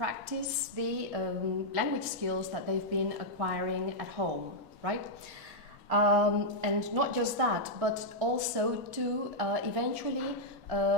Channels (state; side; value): normal; both; correlation -0.05